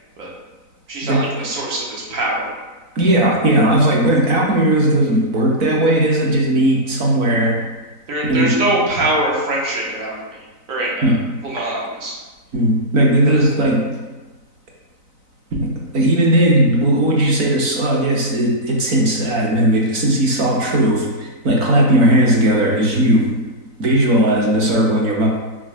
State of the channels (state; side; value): late; left; 4.0 ms